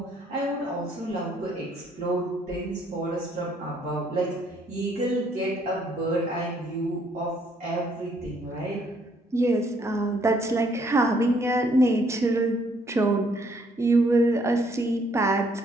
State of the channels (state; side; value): normal; both; correlation 0.67